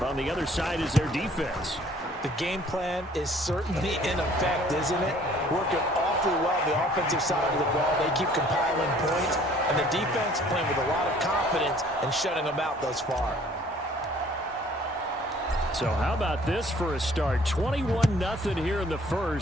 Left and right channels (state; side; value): normal; both; correlation 0.56